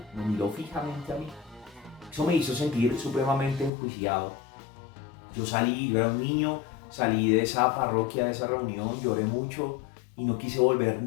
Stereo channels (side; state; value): right; drops out; at 3.7 s